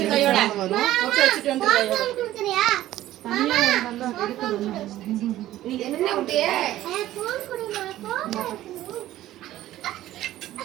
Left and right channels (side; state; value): left; quieter; 14.3 dB